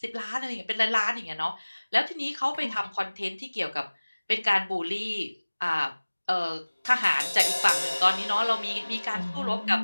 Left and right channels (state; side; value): inverted; both; correlation -1.00